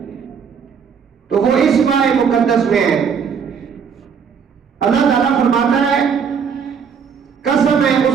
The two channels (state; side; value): quieter; left; 6.8 dB